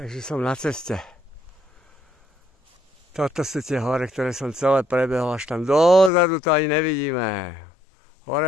som na ceste. Toto sú tie hore, ktoré som celé prebehol, až tam dozadu to ani nevidíme.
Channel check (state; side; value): drops out; right; at 6.1 s